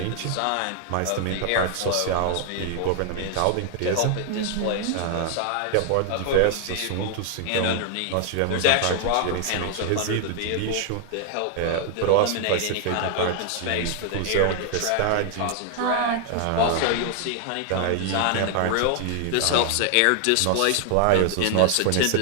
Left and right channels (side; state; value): both; different; correlation 0.00